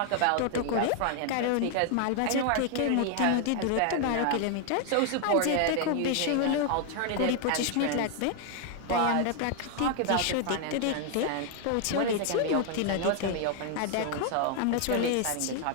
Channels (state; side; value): different; both; correlation 0.00